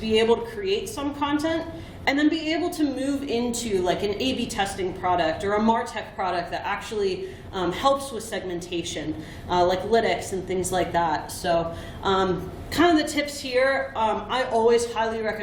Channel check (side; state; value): both; identical; correlation 1.00